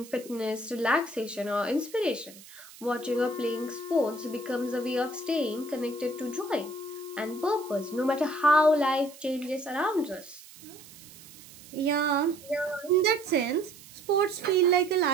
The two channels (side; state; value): right; noise; hiss, 19 dB below the sound